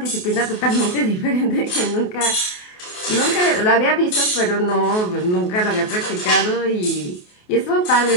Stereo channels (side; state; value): right; late; 28 ms